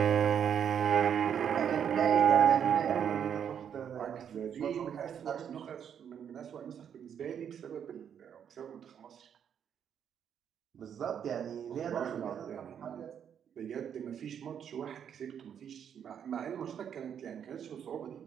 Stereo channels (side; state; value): left; quieter; 8.4 dB